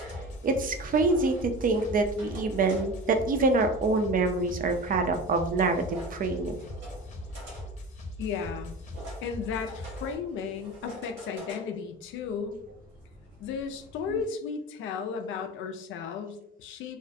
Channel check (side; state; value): both; normal; correlation 0.32